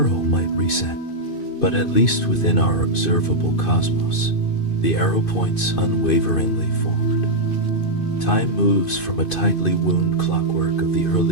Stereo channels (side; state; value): right; late; 2.5 ms